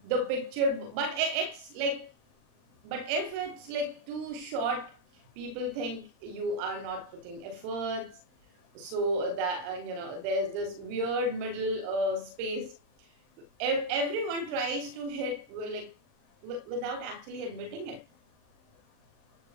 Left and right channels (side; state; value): left; late; 39 ms